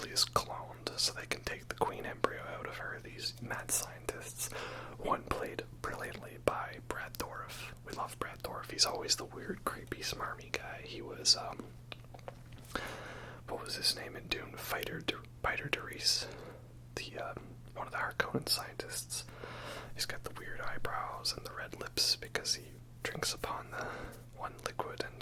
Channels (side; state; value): both; identical; correlation 1.00